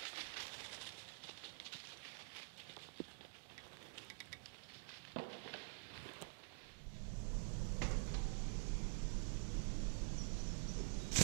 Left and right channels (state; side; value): silent; left; digital silence